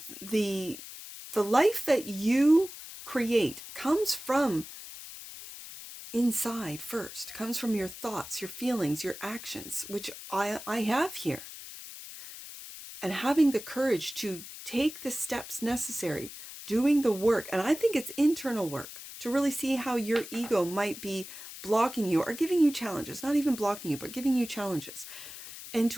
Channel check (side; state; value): left; noise; hiss, 13 dB below the sound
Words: the life that you create comes from inside first, comes from your thoughts, your feelings, your actions, which I have here. And having the courage to take the steps necessary, doing the work, and I think it's internal work, to really see how your ego might be blocking you or giving you challenges, not even blocking you, but giving you challenges, and